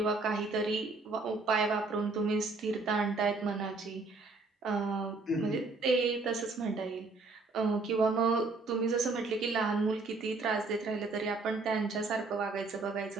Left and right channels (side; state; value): left; quieter; 3.7 dB